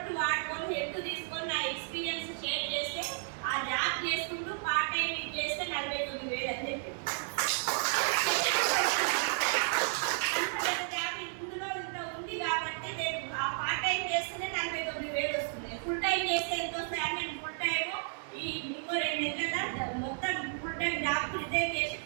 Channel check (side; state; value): left; silent; 56 dB below the other